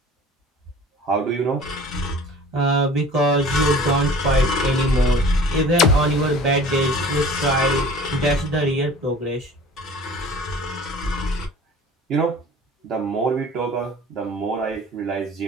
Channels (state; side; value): normal; both; correlation 0.45